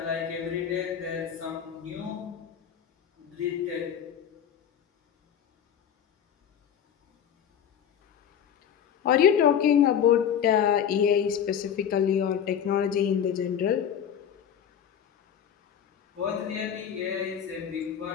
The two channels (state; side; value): quieter; right; 8.7 dB